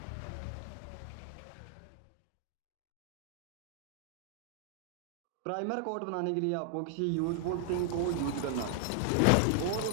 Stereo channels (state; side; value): different; both; correlation 0.00